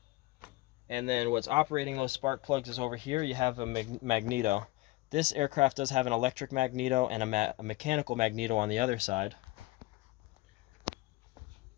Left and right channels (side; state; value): right; quieter; 20.2 dB